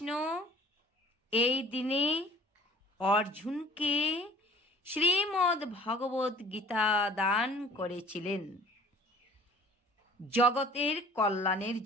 এই দিনে অর্জুনকে শ্রীমদ্ ভগবত গীতা দান করেছিলেন জগতের কল্যাণের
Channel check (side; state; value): both; normal; correlation 0.49